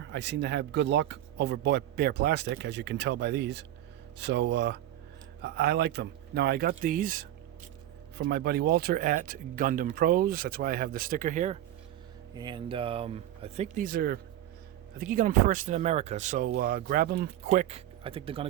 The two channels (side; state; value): left; quieter; 12.9 dB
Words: I seem to have good luck over bare plastic, as you can tell by these. So I like them. Now I got these from my buddy Walter at Gundam Pros. That's why I have the sticker here. And I think he got them first in America. So grab them quick. I think they're going